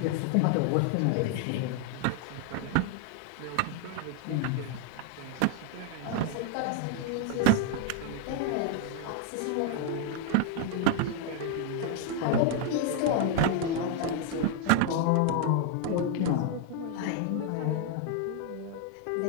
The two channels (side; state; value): both; different; correlation 0.00